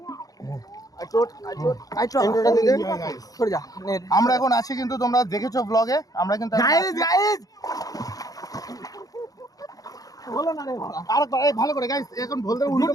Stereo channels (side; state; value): right; late; 0.17 ms